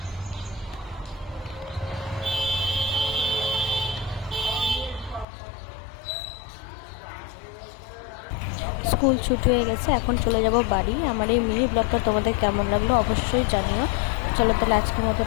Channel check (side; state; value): right; drops out; at 5.2 s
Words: স্কুল ছুটি হয়ে গেছে, এখন চলে যাব বাড়ি। আমার এই মিনি ব্লগটা তোমাদের কেমন লাগলো অবশ্যই জানিও। চলো তাহলে আজকের মতো